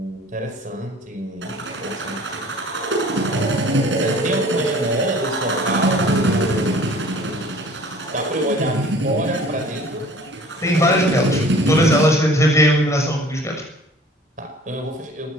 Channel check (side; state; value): both; normal; correlation 0.49